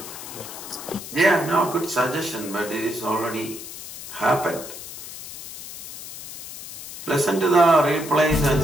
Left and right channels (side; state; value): left; noise; hiss, 12 dB below the sound